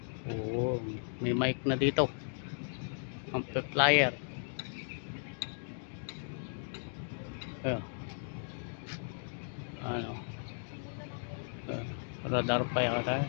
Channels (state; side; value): silent; right; digital silence